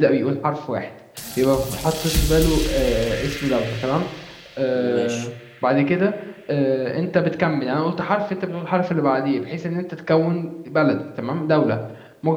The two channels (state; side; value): identical; both; correlation 1.00